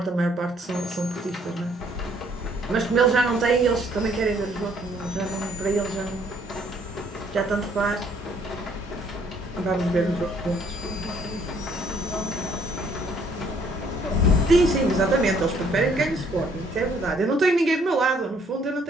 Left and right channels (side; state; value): both; normal; correlation 0.64